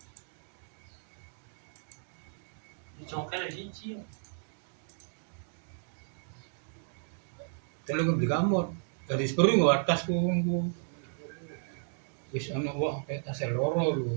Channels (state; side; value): silent; left; digital silence